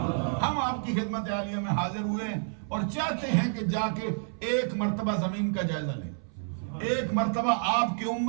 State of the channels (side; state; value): left; silent; 58 dB below the other